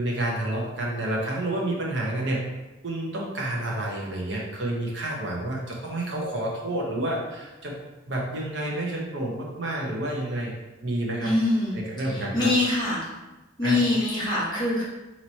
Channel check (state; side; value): normal; both; correlation 0.52